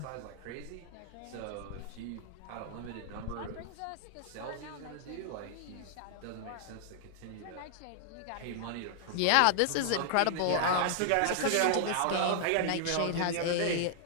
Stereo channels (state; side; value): different; both; correlation -0.01